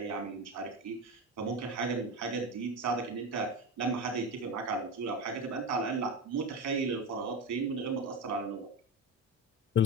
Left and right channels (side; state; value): both; normal; correlation 0.20